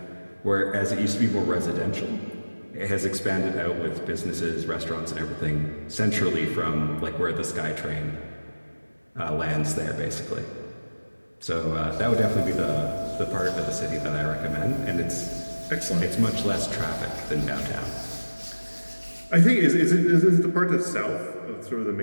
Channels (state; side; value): inverted; both; correlation -1.00